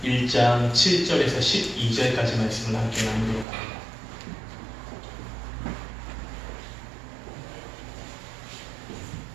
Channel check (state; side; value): drops out; left; at 3.5 s